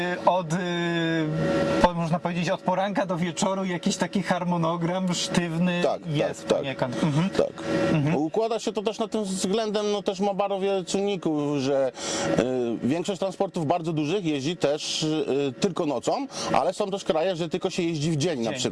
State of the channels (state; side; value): identical; both; correlation 1.00